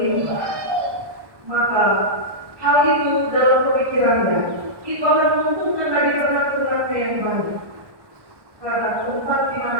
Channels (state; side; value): late; left; 1.2 ms